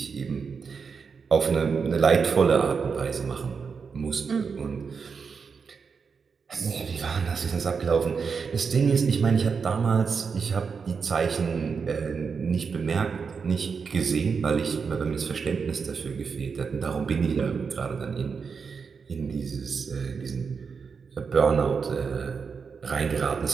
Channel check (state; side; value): quieter; left; 5.7 dB